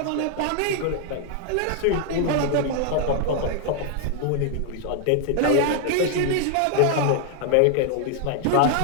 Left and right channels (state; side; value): different; both; correlation 0.00